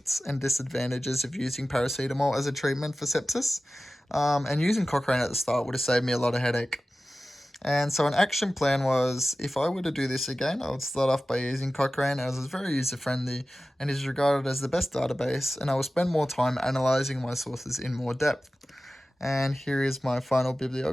and disadvantages of using paracetamol as a treatment for sepsis. And using Cochrane at the start would have saved me a lot of headache. And so, an action plan was if I were to do this again, I would start off by using Cochrane as it's very user friendly and is regarded as the best database, and I will spend more time analyzing my sources in more depth. And here is my final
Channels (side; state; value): both; normal; correlation 0.96